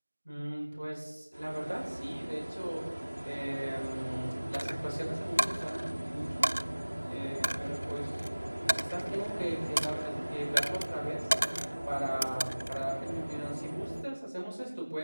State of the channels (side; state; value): both; inverted; correlation -1.00